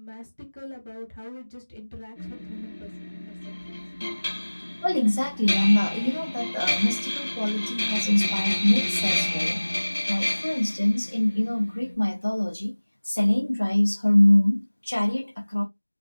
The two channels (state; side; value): inverted; both; correlation -1.00